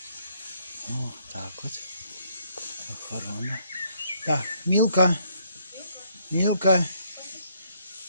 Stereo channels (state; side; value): inverted; both; correlation -0.68